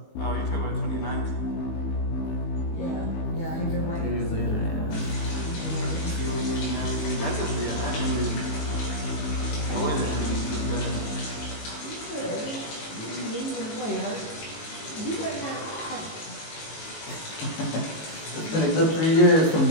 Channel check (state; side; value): late; right; 19 ms